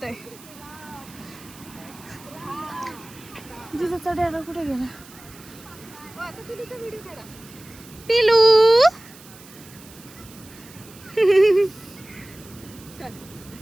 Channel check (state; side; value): noise; right; hiss, 21 dB below the sound